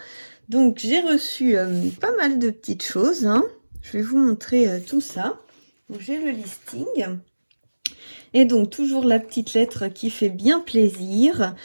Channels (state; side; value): inverted; both; correlation -1.00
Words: Donc j'ai reçu pas mal de petites choses, hein. Je vais vous montrer tout ça. Donc j'ai le listing et donc toujours la petite lettre qui fait bien plaisir,